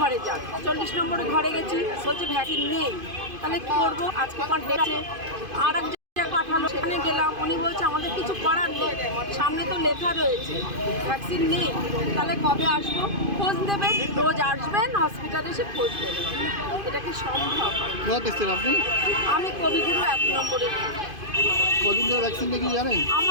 ঘরে যান। 40 নম্বরে ঘরে গেছি, বলছে ভ্যাকসিন নেই। তাহলে কী করবো? আজকে ডেটে আর এক জায়গায় পাঠালো, সেখানে গেলাম, উনি বলছে আমাদের কিছু করার নেই, সামনে তো লেখা রয়েছে ভ্যাকসিন নেই। তাহলে কবে আসবো? খোঁজ দেবেন, রোজ আসবেন হসপিটালে এসে খোঁজ দেবেন, এটা কি সম্ভব? আপনি? আমি কবিগুরু 1 নম্বরে। কদিন ধরে ভ্যাকসিন নাকি জানেন?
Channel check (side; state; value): left; late; 2.5 ms